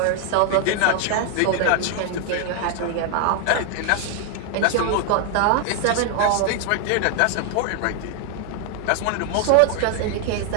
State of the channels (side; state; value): both; different; correlation 0.00